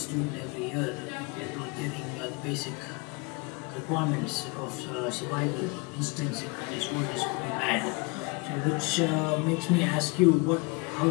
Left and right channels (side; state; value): right; quieter; 29.4 dB